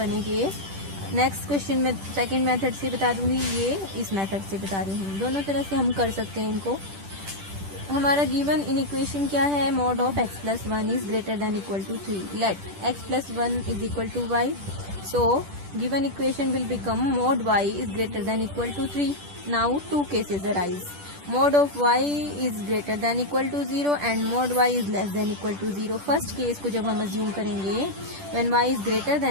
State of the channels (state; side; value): late; left; 10 ms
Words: के. Next question में second method से बता दूंगी, ये इस मेथड से बता रही हूँ. दोनों तरह से हम कर सकते हैं इनको. हमारा गिवन इन इक्वेशन क्या है? mod of x plus 1 is greater than equal to 3. Let x plus 1 is equal to y. So given equation will become mod y is greater than equal to 3. Now two cases arise. Mod of y is greater than equal to 0 and mod y is less than equal to 0. First case को जब हम assume करेंगे when y is greater